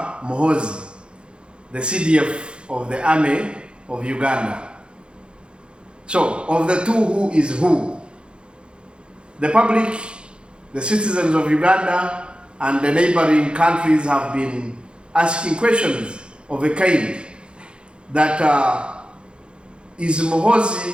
Muhoozi, the CDF of the Army of Uganda? So, of the two, who is who? The public, the citizens of Uganda, and the neighboring countries have been asking questions of a kind that is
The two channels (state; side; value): late; left; 0.054 ms